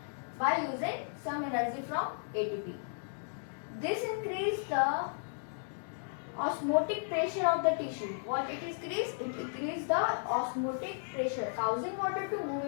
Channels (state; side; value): silent; right; digital silence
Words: by using some energy from ATP. This increases the osmotic pressure of the tissue. What it increases? It increases the osmotic pressure, causing water to move